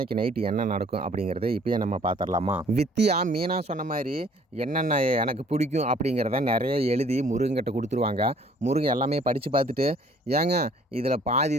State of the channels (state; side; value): normal; both; correlation 0.57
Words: நைட்டு என்ன நடக்கும் அப்படிங்கிறத இப்போயே நம்ம பார்த்துடலாமா? வித்தியா மீனா சொன்ன மாதிரி என்னென்ன எனக்கு பிடிக்கும் அப்படிங்கிறத நிறைய எழுதி முருகன்கிட்ட கொடுத்துருவாங்க. முருகன் எல்லாமே படித்து பார்த்துட்டு, ஏங்க இதில் பாதி